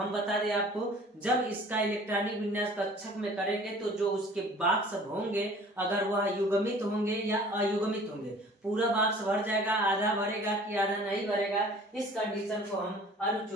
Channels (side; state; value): both; normal; correlation 0.49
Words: बता दें आपको, जब इसका इलेक्ट्रॉनिक विन्यास कक्षक में करेंगे तो जो उसके बॉक्स होंगे अगर वह युग्मित होंगे या अयुग्मित होंगे, पूरा बॉक्स भर जाएगा, आधा भरेगा कि आधा नहीं भरेगा, इस कंडीशन को हम